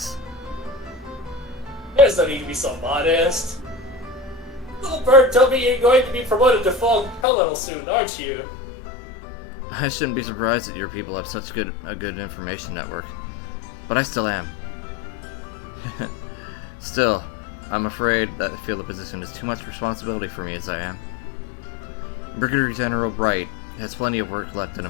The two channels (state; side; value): drops out; right; at 7.2 s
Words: There's no need to be so modest. Little bird told me you're going to be promoted to full colonel soon, aren't you? I shouldn't be surprised that your people have such a good information network. But I still am. Still, I'm afraid that I feel the position is too much responsibility for me as I am. Brigadier General Bright has plenty of work left in